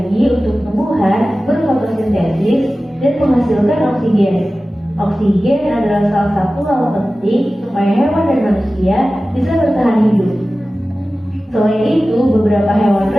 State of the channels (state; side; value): normal; both; correlation 0.96